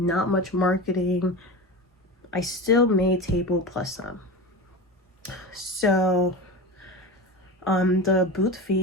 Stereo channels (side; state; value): both; normal; correlation 0.26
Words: much marketing, I still made table plus some. So the booth